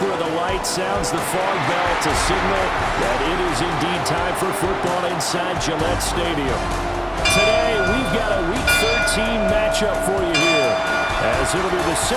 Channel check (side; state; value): both; identical; correlation 1.00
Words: of the light sounds the fog bell to signal that it is indeed time for football inside Gillette Stadium. Today, we've got a Week 13 matchup for you here, as it'll be the